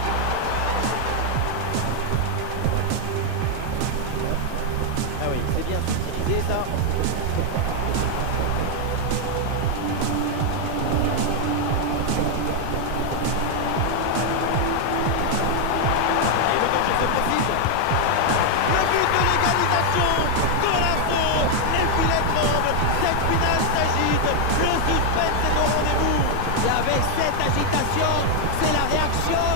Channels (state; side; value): different; both; correlation 0.00